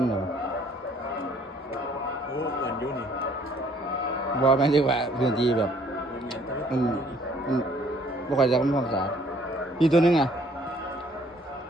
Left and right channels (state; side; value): normal; both; correlation 0.61